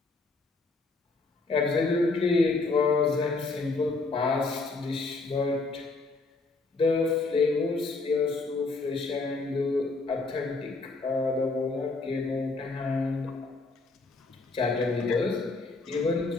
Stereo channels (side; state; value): right; quieter; 3.6 dB